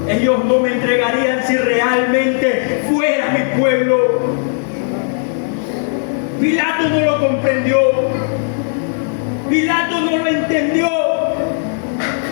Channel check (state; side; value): silent; right; digital silence